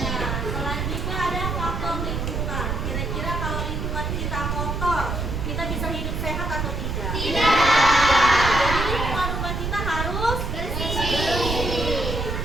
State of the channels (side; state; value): right; noise; rumble, 2 dB below the sound